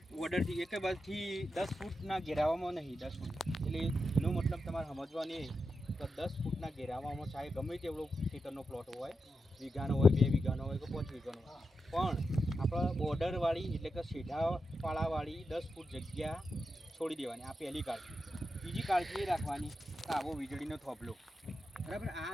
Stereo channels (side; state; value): both; normal; correlation 0.88